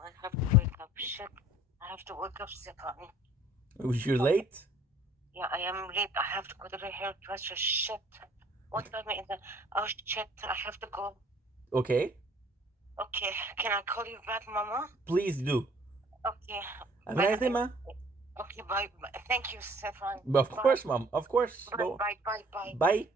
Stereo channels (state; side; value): normal; both; correlation 0.55